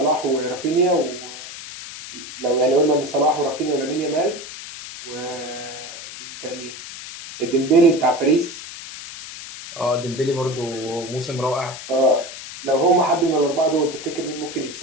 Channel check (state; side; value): noise; left; hiss, 12 dB below the sound